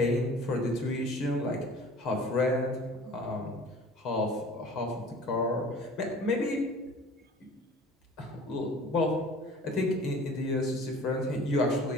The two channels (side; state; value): both; normal; correlation 0.45